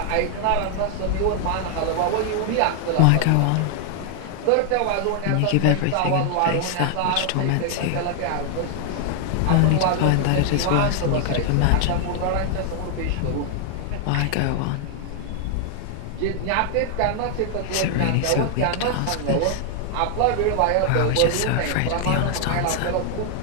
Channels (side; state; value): both; different; correlation 0.00